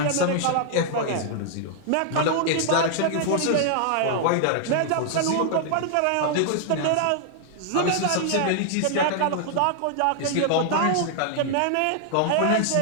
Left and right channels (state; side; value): different; both; correlation 0.00